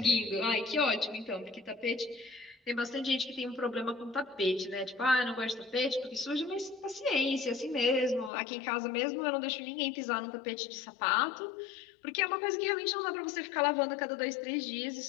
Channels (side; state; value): right; drops out; at 8.3 s